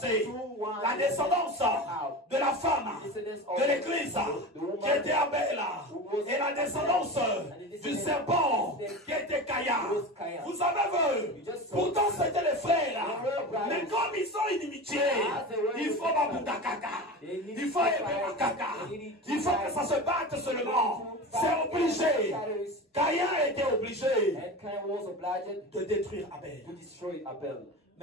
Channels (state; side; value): normal; both; correlation 0.28